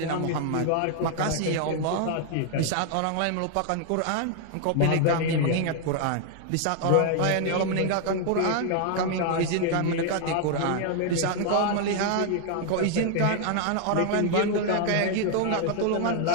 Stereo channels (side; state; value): both; different; correlation 0.00